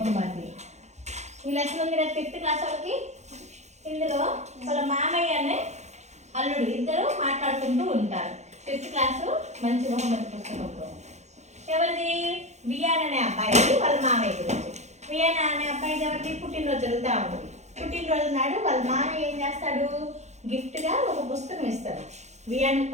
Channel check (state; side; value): late; left; 0.33 ms